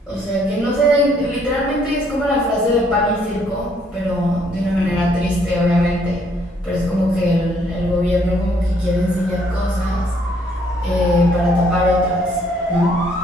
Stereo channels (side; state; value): both; normal; correlation 0.67